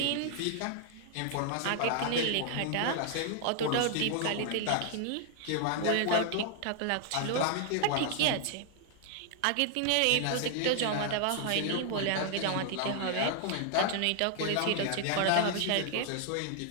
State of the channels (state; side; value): different; both; correlation 0.00